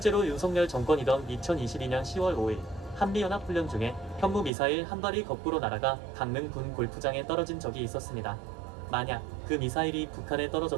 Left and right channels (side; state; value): left; drops out; at 4.5 s